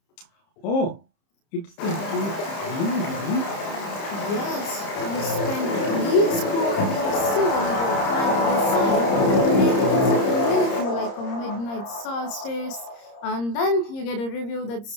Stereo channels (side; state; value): right; late; 30 ms